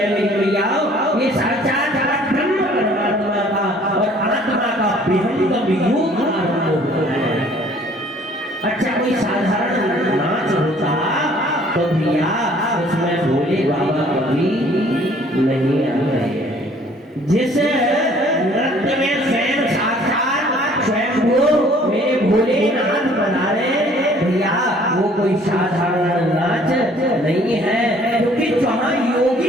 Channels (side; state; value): both; normal; correlation 0.57